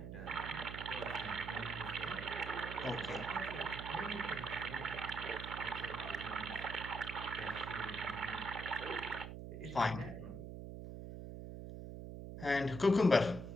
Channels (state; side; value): noise; right; hum, 8 dB below the sound